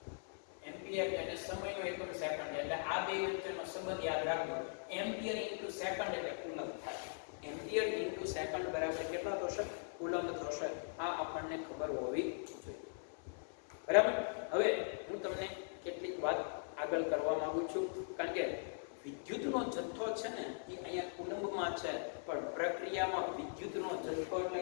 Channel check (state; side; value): silent; right; 51 dB below the other